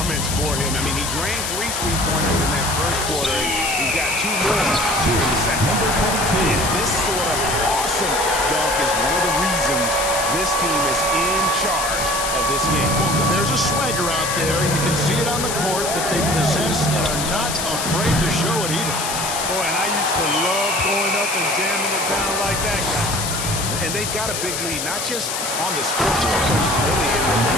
for him. I mean, he drained 3 3-pointers in that first quarter. And he's got 2 more in the second. And this sort of awesome dunk is one of the reasons this team is in charge of this game. Well, there's a swagger out there. You can see it on the court that they possess and are not afraid to show it either. Boy, and I used to love going up and jamming it down like that, guys. And they've got a big lead, not just on the scoreboard, but really in the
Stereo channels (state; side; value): noise; left; hiss, 3 dB below the sound